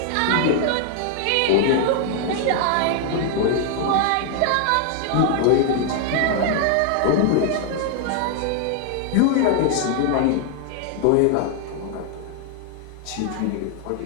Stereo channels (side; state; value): both; different; correlation 0.00